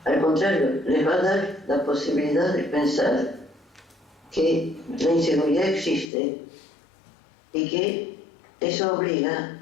Al contrario, les va a dar la posibilidad de pensar que la inseguridad existe y que eso obliga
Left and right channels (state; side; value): drops out; right; at 6.1 s